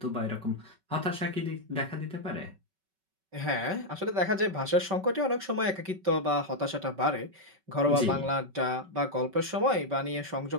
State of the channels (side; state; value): left; late; 5.3 ms